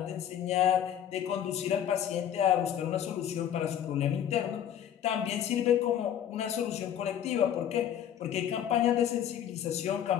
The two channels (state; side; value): quieter; right; 10.0 dB